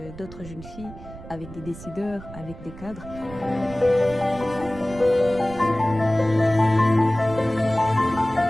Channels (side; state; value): right; noise; rumble, 15 dB below the sound